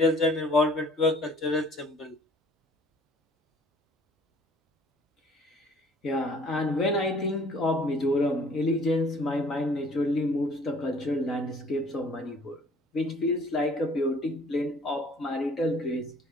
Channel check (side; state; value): both; normal; correlation 0.55